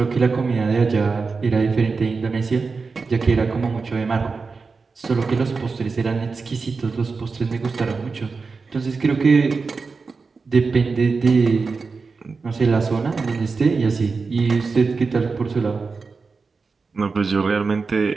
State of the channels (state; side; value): quieter; left; 4.5 dB